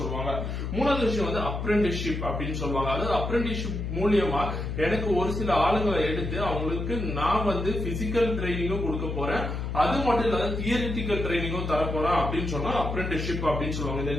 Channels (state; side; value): noise; left; hum, 4 dB below the sound